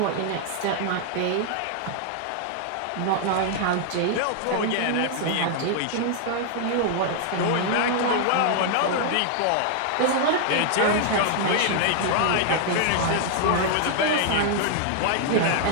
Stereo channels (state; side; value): different; both; correlation -0.01